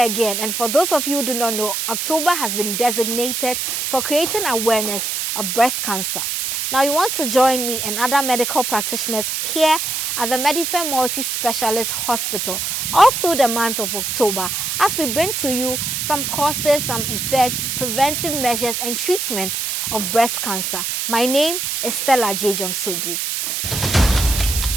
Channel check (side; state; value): right; noise; hiss, 1 dB below the sound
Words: and for those of you who do not know, October has been designated for creating awareness of breast cancer. Now, you want to join me and other medical practitioners here at the Preventive Multi-Specialist Hospital all through the month of October as we bring to you some causes, some effects, preventive measures and treatments of breast cancer. My name is Stella Dziedzorm Sogli.